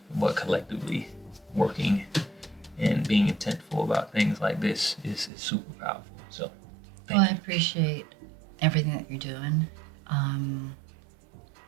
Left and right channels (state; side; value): drops out; left; at 5.3 s